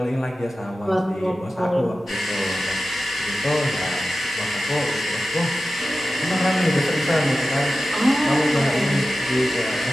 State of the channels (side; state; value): both; normal; correlation 0.94